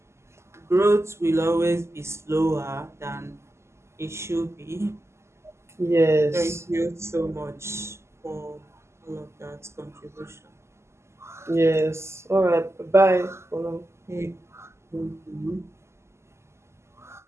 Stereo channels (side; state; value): left; late; 0.13 ms